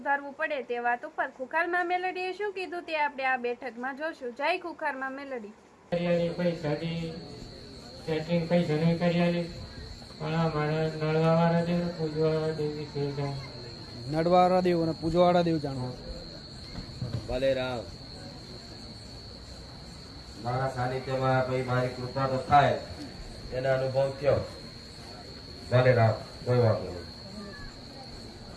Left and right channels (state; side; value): identical; both; correlation 1.00